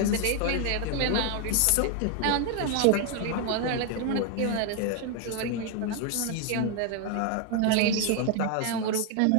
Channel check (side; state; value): both; different; correlation 0.01